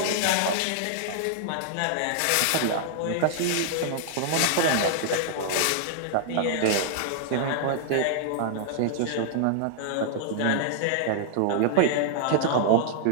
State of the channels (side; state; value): both; different; correlation -0.01